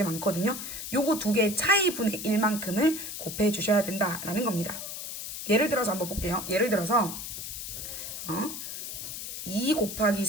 많거든요. 요거 두 개의 차이분의 1만큼을 곱해 주셔야 된다라는 겁니다. 예를 들어서 한번 볼게요. 예를 들어서 2 곱하기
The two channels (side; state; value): left; noise; hiss, 7 dB below the sound